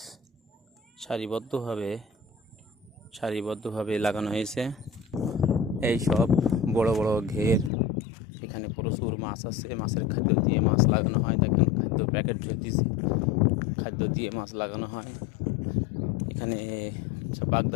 সারিবদ্ধভাবে লাগানো হয়েছে। এই সব বড় বড় ঘের, এখানে প্রচুর মাছ আছে। মাছের খাদ্য দিয়ে মাছ লাগানো হয়। দেখেন খাদ্য প্যাকেট ঝরতেছে, খাদ্য দিয়ে মাছ লাগানো হয়। এখানে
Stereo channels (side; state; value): right; drops out; at 7.7 s